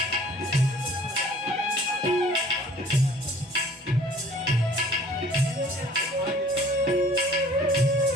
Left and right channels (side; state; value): both; normal; correlation 0.52